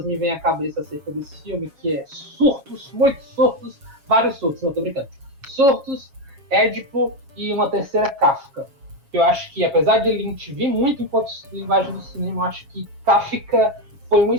me vêm à cabeça acerca desse filme, que é surtos, muitos surtos, vários surtos, não tô brincando. Surtos, Édipo e uma terceira, Kafka. Eu acho que, apesar de Lynch vir muito enquanto linguagem do cinema, eu acho que Kafka foi uma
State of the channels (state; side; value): late; left; 7.3 ms